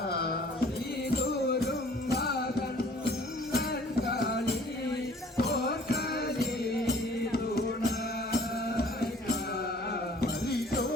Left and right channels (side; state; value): both; normal; correlation 0.54